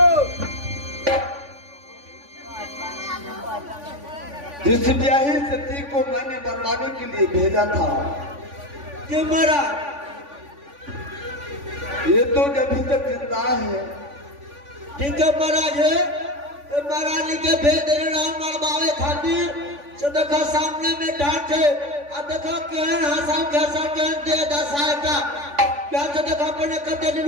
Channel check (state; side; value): late; left; 3.5 ms